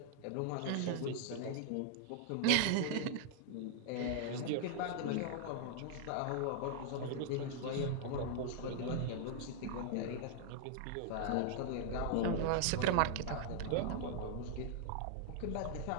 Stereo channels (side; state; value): both; different; correlation -0.01